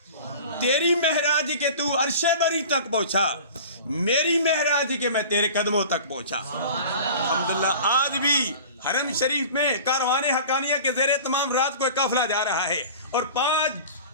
تیری معراج کے تو عرش بری تک پہنچا، میری معراج کے میں تیرے قدموں تک پہنچا. الحمدللہ آج بھی حرم شریف میں کاروان حقانیہ کے زیر تمام رات کو ایک قافلہ جا رہا ہے، اور 5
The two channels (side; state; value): both; inverted; correlation -0.40